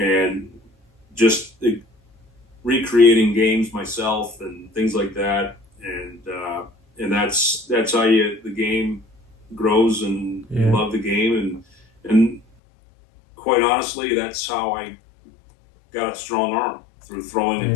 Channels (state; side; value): drops out; right; at 12.4 s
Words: just recreating games myself and things like that, and that's how the game grows, and you love the game, and quite honestly, that's how I got a strong arm, through throwing